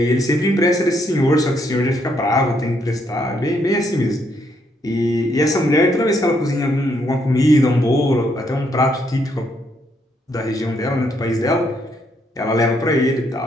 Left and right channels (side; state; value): both; normal; correlation 0.73